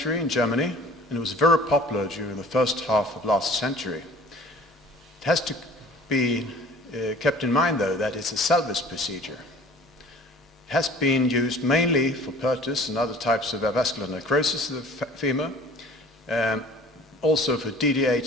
in Germany, and it was very popular during the first half of last century. It has to be kept in mind, though, that it's a salvage procedure. It has been used mainly for Perthes and other types of avascular necrosis of the femur, also for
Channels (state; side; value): normal; both; correlation 0.48